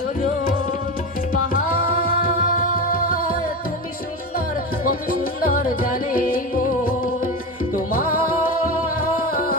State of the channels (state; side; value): normal; both; correlation 0.21